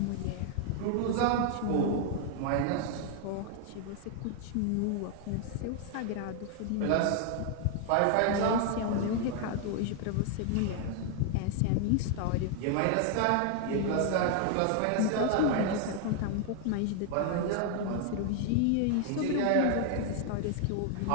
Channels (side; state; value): both; different; correlation 0.00